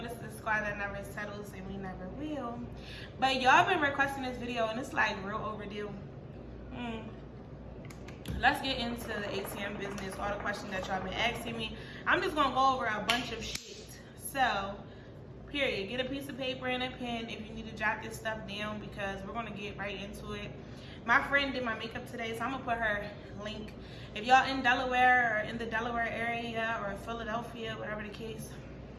this is the squad that never settles and we never will. But y'all been requesting this video and it's like real overdue. Let's get into the ATM business, all the questions that y'all been asking me. I'm just gonna go over a bunch of shit. So, period. Get a piece of paper and a pen if you need to jot this stuff down because we're gonna get right into it. My friend did my makeup today, so I'm gonna put her link. If y'all in Delaware or in the Delaware area or Philadelphia, whatever the case,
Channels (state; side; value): identical; both; correlation 1.00